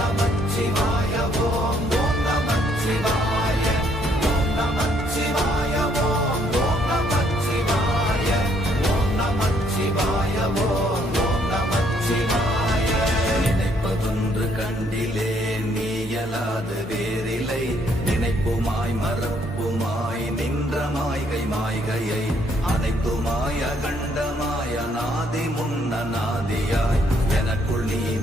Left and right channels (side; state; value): both; normal; correlation 0.68